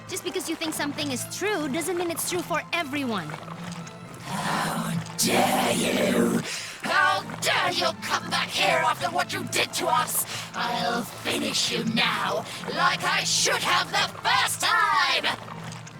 Just because you think something is true doesn't mean it's true for everyone. How dare you! How dare you come back here after what you did to us? I'll finish you now, like I should have the first time!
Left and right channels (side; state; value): both; identical; correlation 1.00